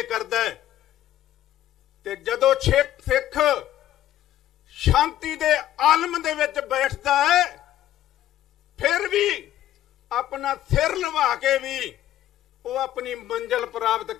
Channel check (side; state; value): right; quieter; 12.7 dB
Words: ਕਰਦਾ ਹੈ। ਤੇ ਜਦੋਂ ਸਿੱਖ ਸ਼ਾਂਤੀ ਦੇ ਆਲਮ ਦੇ ਵਿੱਚ ਬੈਠਦਾ ਹੈ, ਫਿਰ ਵੀ ਆਪਣਾ ਸਿਰ ਲਵਾ ਕੇ ਵੀ ਉਹ ਆਪਣੀ ਮੰਜ਼ਿਲ ਪ੍ਰਾਪਤ